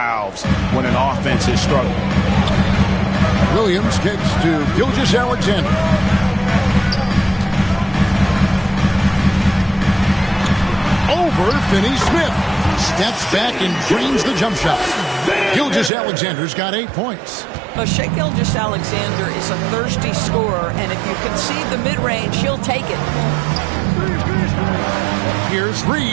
when an offense is struggling. Williams kicks to Gilgeous-Alexander. Over Finney-Smith. Steps back and drains the jump shot. Gilgeous-Alexander's got 8 points. Well, Shai Gilgeous-Alexander is a thirsty scorer, and if you concede the mid-range, he'll take it. Here's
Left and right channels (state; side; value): drops out; left; at 15.9 s